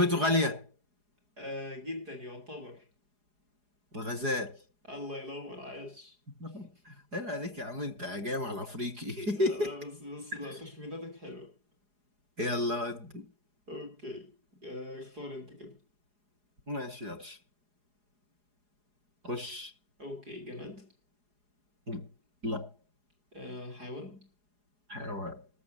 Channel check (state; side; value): late; left; 4.8 ms